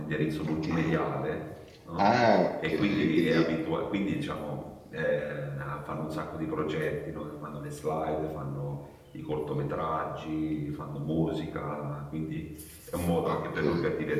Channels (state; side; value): identical; both; correlation 1.00